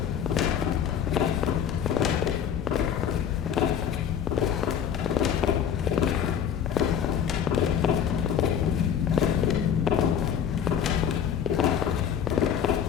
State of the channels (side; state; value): right; quieter; 8.6 dB